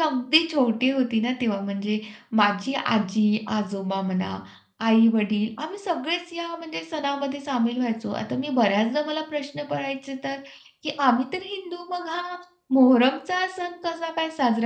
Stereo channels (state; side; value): identical; both; correlation 1.00